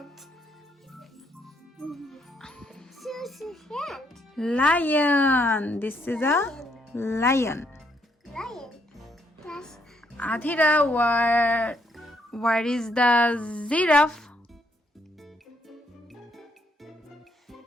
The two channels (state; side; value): normal; both; correlation 0.73